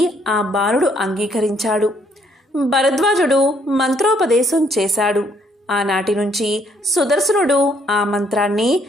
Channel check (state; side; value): normal; both; correlation 0.68